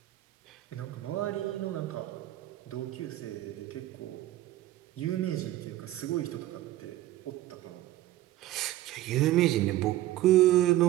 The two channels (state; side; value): quieter; left; 14.8 dB